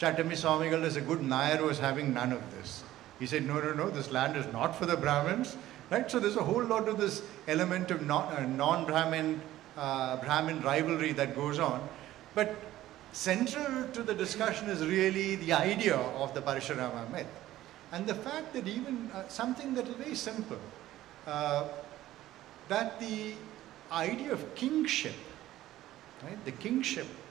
Swamigal, as a good Nair, was having none of this. He said, no, this land is not for the Brahmins, right? So there's a whole lot of this element of non-Brahmin, Brahmin rivalry that goes on. But central to the discussion is really the idea of the Parashurama myth. And the fact that even something that is very simple, that the idea of kingship, right? The kingship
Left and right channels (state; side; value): quieter; left; 14.5 dB